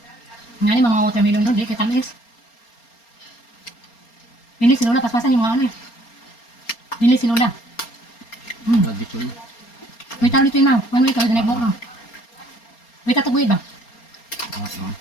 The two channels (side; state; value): right; late; 4.3 ms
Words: Nga ni mga watermelon doon, di kay tamis. Bili si Lola, paspasan yung mga ano eh. Bili si Lola. Nagdito na. May taro dito yun na. One week, kami nag-book na. May tataguyid ba? Oo.